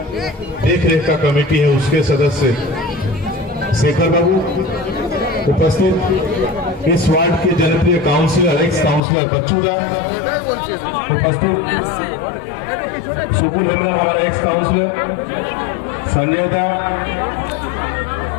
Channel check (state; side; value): drops out; right; at 9.0 s